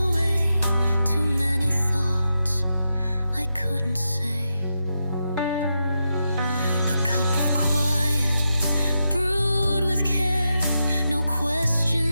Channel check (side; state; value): both; inverted; correlation -0.87